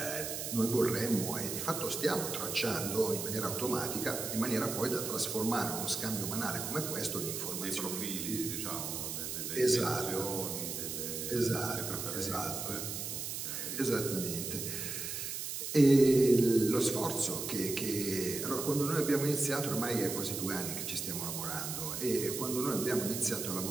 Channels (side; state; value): right; noise; hiss, 4 dB below the sound